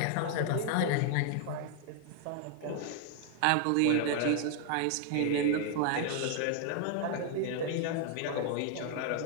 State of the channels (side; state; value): both; different; correlation 0.00